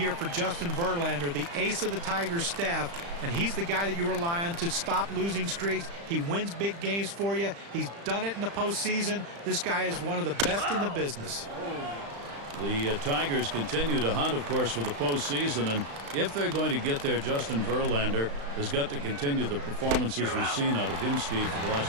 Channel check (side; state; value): left; late; 35 ms